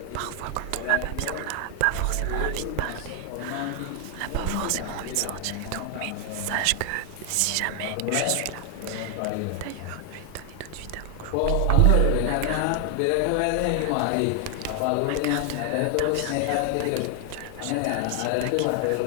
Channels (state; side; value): different; both; correlation 0.00